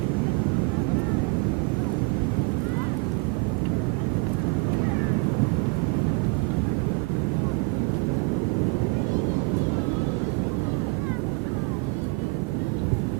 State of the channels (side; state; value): left; quieter; 29.5 dB